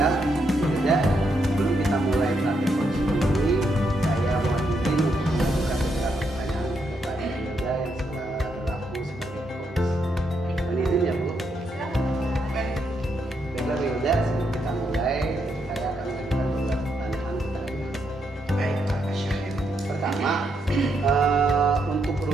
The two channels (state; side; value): normal; both; correlation 0.79